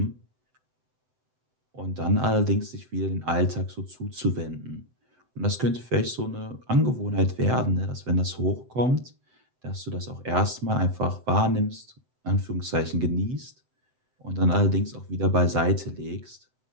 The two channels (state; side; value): late; left; 7.8 ms